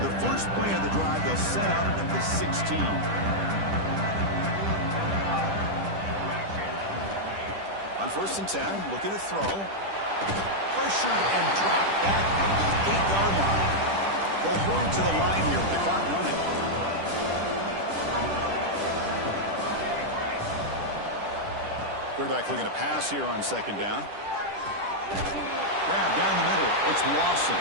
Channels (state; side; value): late; left; 10 ms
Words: first play of the drive, they'll set up at the 16. On first and 10, looking to throw. Pressured and dropped back at the 8-yard line. They'll hurry to the line here with the clock running. Quarterback looking to pass here on second down. Grab down the middle. It's Lawson.